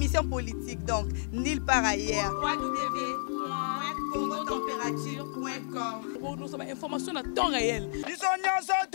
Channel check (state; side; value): silent; right; digital silence